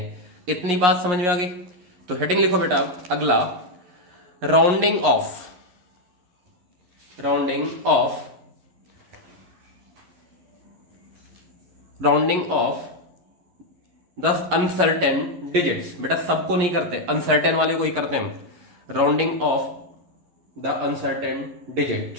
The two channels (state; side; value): late; left; 11 ms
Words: इतनी बात समझ में आ गई? तो हेडिंग लिखो बेटा अगला, rounding off, rounding off, rounding off the uncertain digits. बेटा सबको नहीं करते, अनसर्टेन वाले को ही करते हैं। Rounding off the uncertain digit,